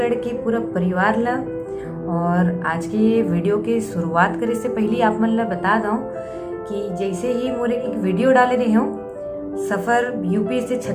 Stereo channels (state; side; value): identical; both; correlation 1.00